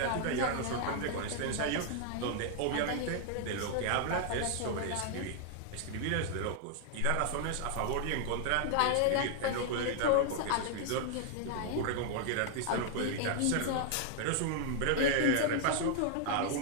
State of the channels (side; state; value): both; different; correlation 0.00